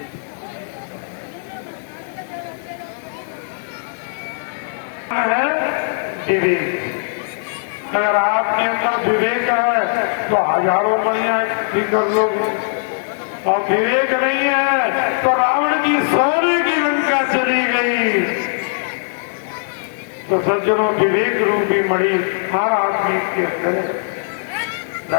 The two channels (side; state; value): right; silent; 66 dB below the other